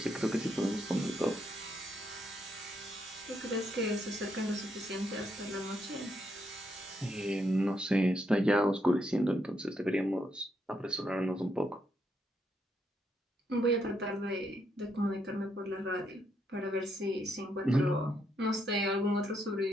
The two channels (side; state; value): both; normal; correlation 0.77